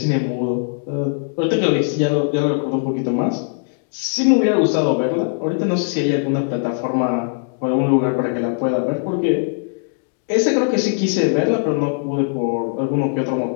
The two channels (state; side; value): silent; right; digital silence